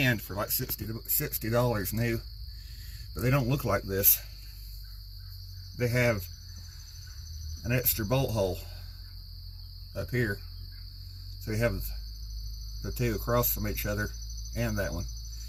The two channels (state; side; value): identical; both; correlation 1.00